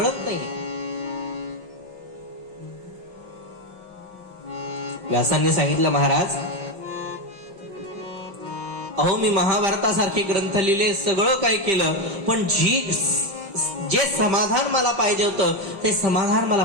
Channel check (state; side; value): late; left; 5.1 ms